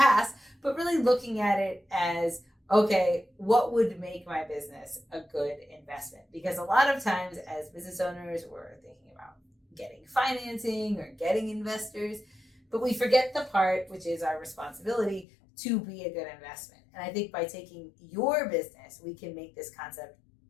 but really looking at it as, okay, what would make my business a good investment? Because a lot of times as business owners, we're thinking about getting financing or getting investors, but we forget the part, which is our responsibility to be a good investment. And I think by taking your business, we can make this concept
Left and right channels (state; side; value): drops out; right; at 15.2 s